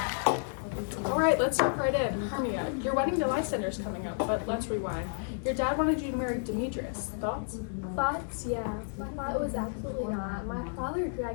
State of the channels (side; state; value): right; silent; 57 dB below the other